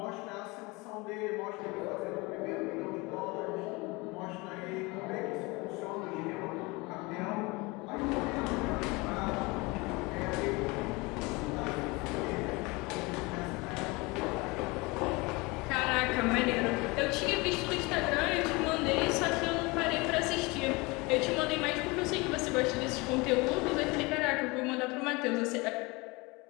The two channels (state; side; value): quieter; right; 25.1 dB